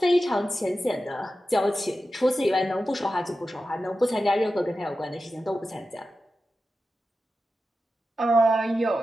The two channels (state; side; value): normal; both; correlation 0.92